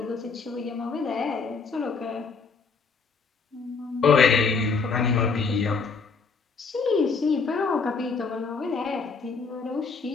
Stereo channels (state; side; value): quieter; right; 4.8 dB